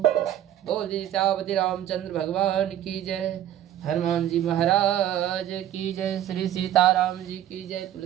बोले श्यामति रामचंद्र भगवान की जय, हनुमान जी महाराज की जय, श्री सीताराम जी की जय,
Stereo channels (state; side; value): quieter; left; 11.7 dB